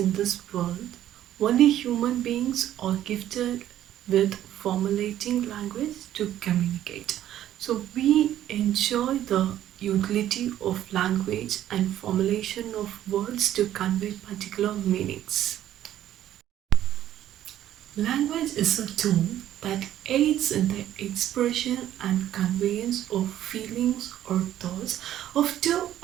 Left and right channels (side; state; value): left; quieter; 12.1 dB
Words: this world, only human beings are gifted with formulating language to communicate. So we enjoy the utility of language and formulation of words to convey particular meanings. Language is a tool that aids in the expression and conveyance of feelings or thoughts of two